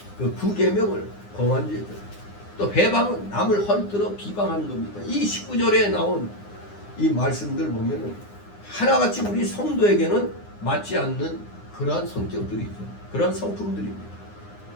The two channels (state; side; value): late; right; 9.8 ms